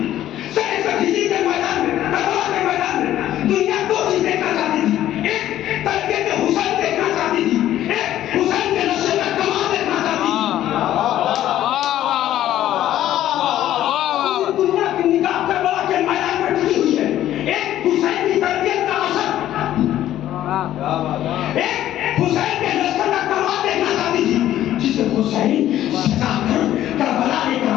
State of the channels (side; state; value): right; quieter; 12.7 dB